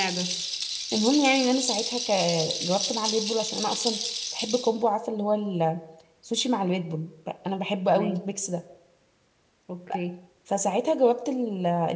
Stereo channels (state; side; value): identical; both; correlation 1.00